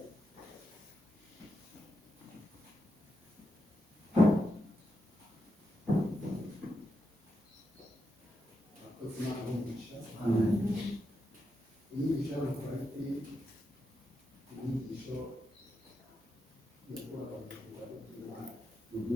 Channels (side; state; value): both; normal; correlation 0.85